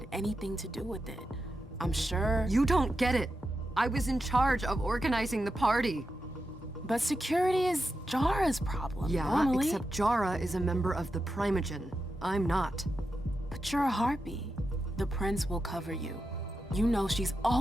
anything to do with it. I'm sure. You don't get it. I was in charge of organizing the party. But security is Jara's problem. Yeah, normally. except Jara is a member of the Primogen. I'm not. But you're a harpy. The prince will cover you. You know she's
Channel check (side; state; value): both; normal; correlation 0.89